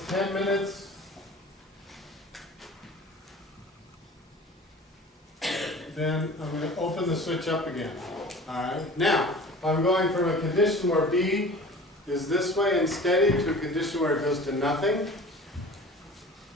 10 minutes, then I'm going to open the switch up again. Alright, now, I'm going from a condition where B is this way and steady to a condition where it goes to nothing.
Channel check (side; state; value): both; normal; correlation 0.42